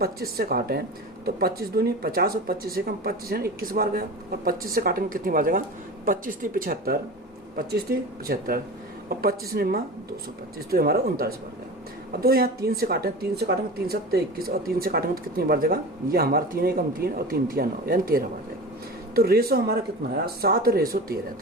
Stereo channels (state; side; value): normal; both; correlation 0.32